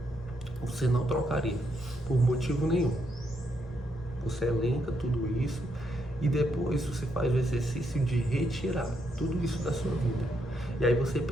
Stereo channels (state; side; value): normal; both; correlation 0.78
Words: você não trocaria por motivo nenhum. Você elenca tudo isso e depois você faz o exercício de retirar tudo isso da sua vida. E aí você